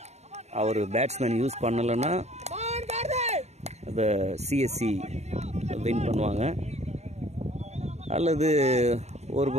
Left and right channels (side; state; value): left; late; 0.32 ms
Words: அவர் பேட்ஸ்மேன் யூஸ் பண்ணலைன்னா அதை சிஎஸ்சி வின் பண்ணுவாங்க. அல்லது ஒரு